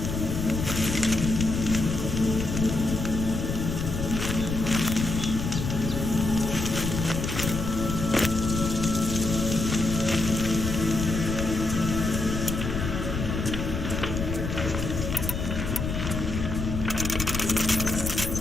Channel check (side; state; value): left; noise; rumble, 3 dB below the sound